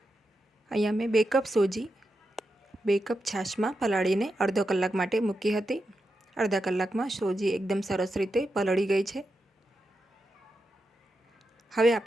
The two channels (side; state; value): both; normal; correlation 0.88